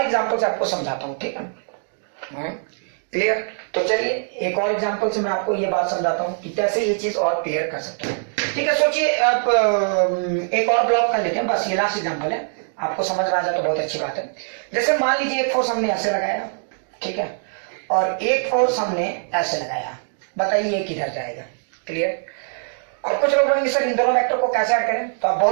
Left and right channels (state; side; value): silent; left; digital silence